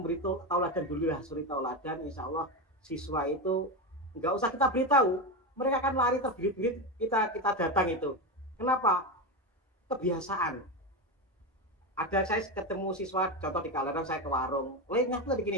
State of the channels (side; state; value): both; normal; correlation 0.15